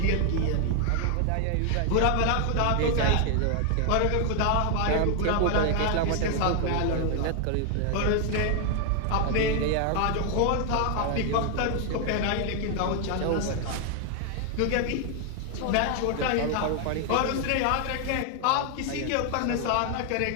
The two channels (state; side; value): different; both; correlation 0.00